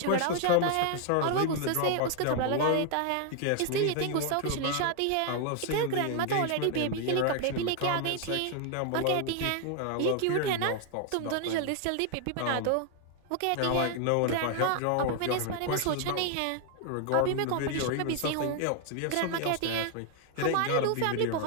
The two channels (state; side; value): different; both; correlation 0.00